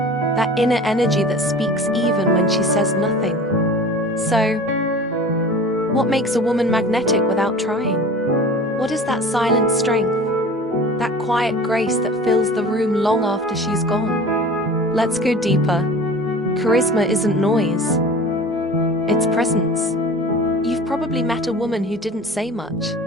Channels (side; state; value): both; normal; correlation 0.40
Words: That inner energy that speaks even when she says nothing. So, what makes a woman magnetic without trying? What is that silent strength? That quiet grace that fills the room long after she's gone? Let's go deeper. Charisma isn't noise. It's presence. You've probably met a woman who didn't say much,